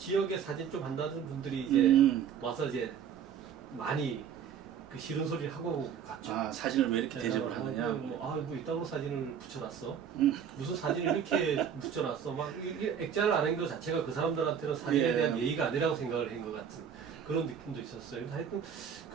사진 좀 한다는 분들이 이제 와서 이제 많이 그 싫은 소리를 하고 갔죠. 아, 사진을 왜 이렇게 대접을 하느냐. 뭐 이따구로 사진을 붙여놨어. 무슨 사진을 이렇게 붙여놨어. 막 액자를 안 한 것 자체가 그 사람들한테는 사진에 예. 대한 예의가 아니라고 생각을 한 것 같은 그런 느낌도 있었어요. 근데 하여튼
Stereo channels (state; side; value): quieter; left; 8.0 dB